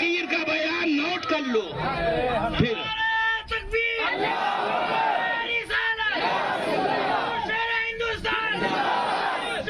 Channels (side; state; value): both; identical; correlation 1.00